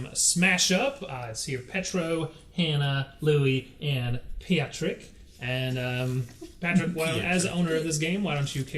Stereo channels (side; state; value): both; identical; correlation 1.00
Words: Smash Up. It's here Petro, Hannah, Louie, and Patrick. And Patrick, as owner of this game, why don't you